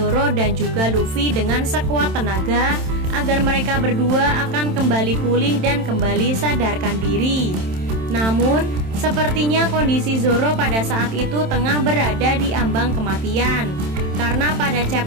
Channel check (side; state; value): left; late; 27 ms